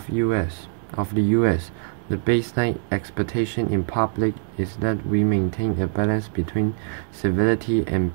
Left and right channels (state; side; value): silent; left; digital silence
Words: the US, the baseline expectation in public is that we maintain a balance between civility and